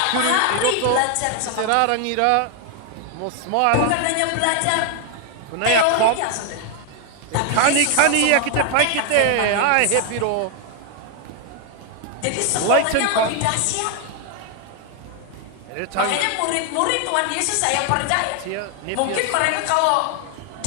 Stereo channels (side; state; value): both; different; correlation 0.00